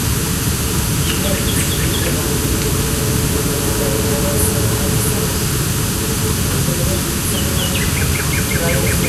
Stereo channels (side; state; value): both; identical; correlation 1.00